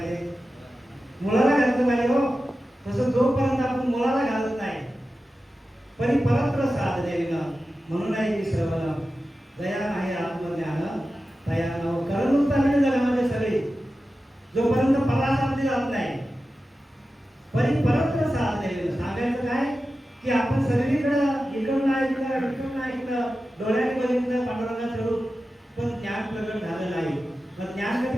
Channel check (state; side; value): normal; both; correlation 0.93